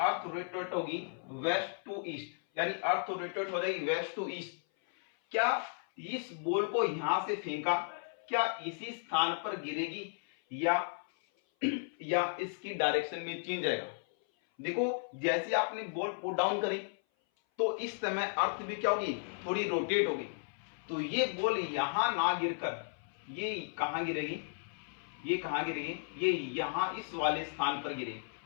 रोटेट होगी वेस्ट टू ईस्ट, यानी अर्थ रोटेट हो जाएगी वेस्ट टू ईस्ट। क्या इस बॉल को यहां से फेंका, क्या इसी स्थान पर गिरेगी या इसकी डायरेक्शन में चेंज आएगा। देखो जैसे आपने बॉल पुट डाउन करी तो इस समय अर्थ भी क्या होगी, थोड़ी रोटेट होगी। तो ये बॉल यहां ना गिरकर ये कहां गिरेगी, ये कहां गिरेगी, ये यहां इस वाले स्थान पर गिरेगी।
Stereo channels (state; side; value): silent; right; 55 dB below the other